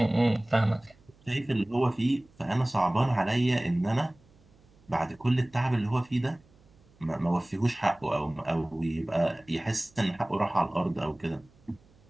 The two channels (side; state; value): right; noise; hum, 29 dB below the sound